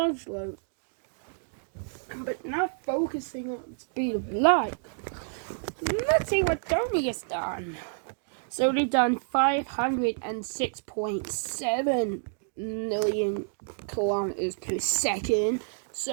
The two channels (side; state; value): left; silent; digital silence